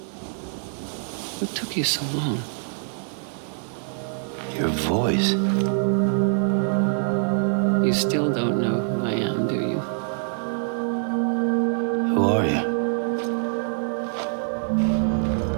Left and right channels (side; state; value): left; silent; 56 dB below the other